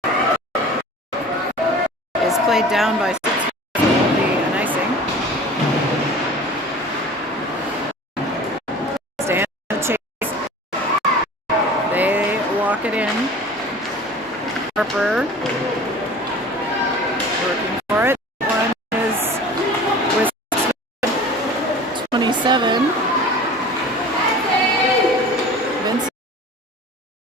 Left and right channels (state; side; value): normal; both; correlation 0.41